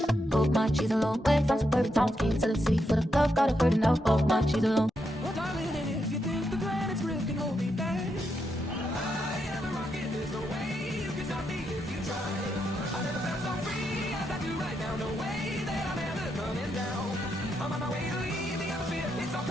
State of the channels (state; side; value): normal; both; correlation 0.82